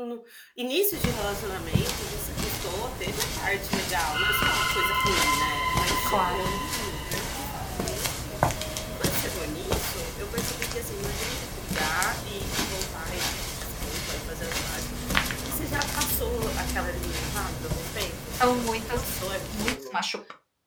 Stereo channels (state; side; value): identical; both; correlation 1.00